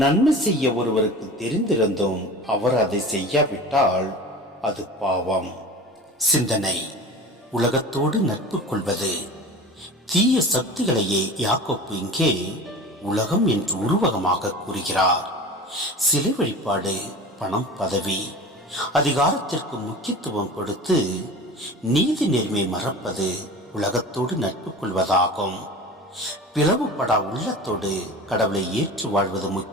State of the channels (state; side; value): normal; both; correlation 0.36